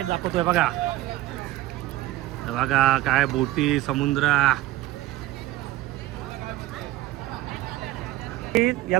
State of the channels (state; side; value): quieter; left; 16.2 dB